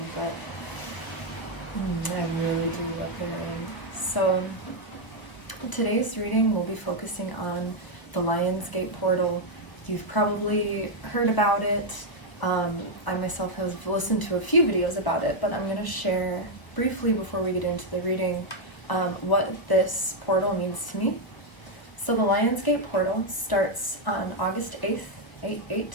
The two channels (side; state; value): right; late; 1.2 ms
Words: but I really do love the rain. So today's reading will be focusing on the Lionsgate portal. You've probably heard about it. I myself have listened to a few videos about it, but I'm going to share briefly before we get into the reading what this portal means to me. So the Lionsgate portal starts on August 8th, 8/8,